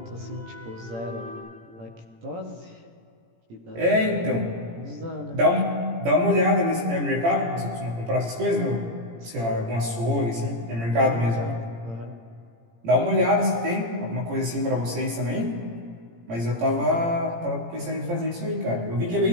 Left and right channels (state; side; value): late; left; 17 ms